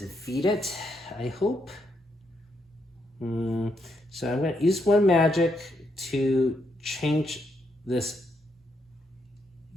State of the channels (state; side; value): normal; both; correlation 0.78